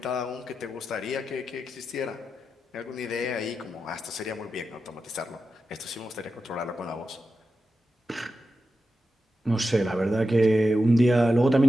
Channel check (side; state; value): both; normal; correlation 0.90